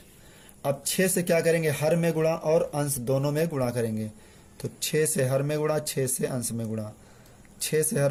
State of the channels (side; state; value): both; identical; correlation 1.00